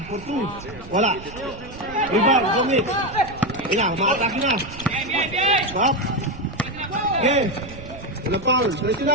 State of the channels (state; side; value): noise; right; rumble, 16 dB below the sound